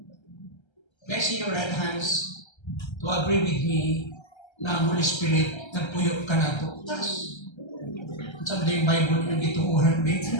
May see your right hands to agree with me na Holy Spirit, nagpuyo ka na to. Tapos, sabi na yung Bible yung gituuhan,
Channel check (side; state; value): right; late; 1.3 ms